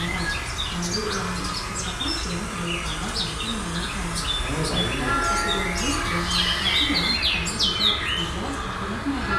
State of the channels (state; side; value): identical; both; correlation 1.00